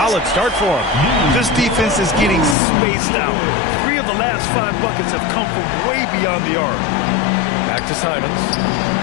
start for him. This defense is getting spaced out. 3 of the last 5 buckets have come from way beyond the arc. Back to Simons.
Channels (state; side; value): drops out; right; at 2.6 s